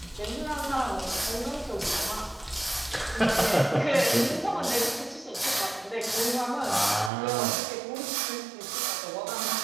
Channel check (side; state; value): left; drops out; at 7.1 s